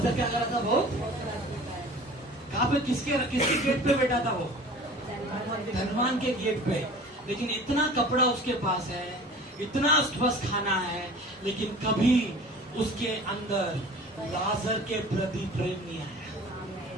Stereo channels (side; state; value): both; normal; correlation 0.43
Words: क्या कर रहा था वो? कहां पे? किसके गेट पे बैठा था वो? धनवान के गेट पे। लेकिन इतना कपड़ा उसके पास है, इतना उसके पास खाना है, लेकिन कभी उसके अंदर लाजर के प्रति प्रेम नहीं